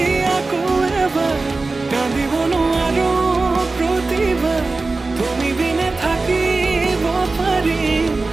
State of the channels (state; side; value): quieter; left; 3.6 dB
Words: আকৌ এবাৰ কান্দিব নোৱাৰো প্ৰতিভা তুমি বিনে থাকিব পাৰিম